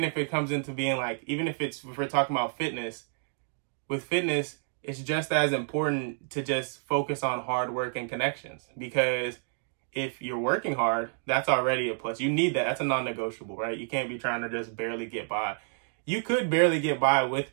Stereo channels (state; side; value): silent; left; digital silence